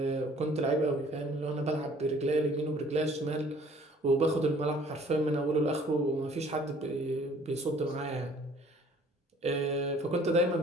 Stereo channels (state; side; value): normal; both; correlation 0.55